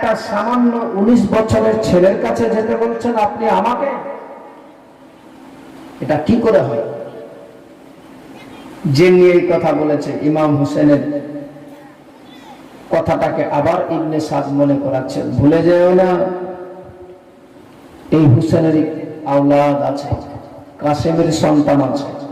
সামান্য 19 বছরের ছেলের কাছে যেতে বলছেন আপনি আমাকে? এটা কি করে হয়? যে নিয়ে এই কথা বলেছে ইমাম হুসেনের কথাটাকে আবার ইবনে সাদ মনে করাচ্ছে, ভুলে যেও না এই হুসেনের আওলাদ আছে, কাসিমের সন্তান আছে।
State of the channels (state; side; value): identical; both; correlation 1.00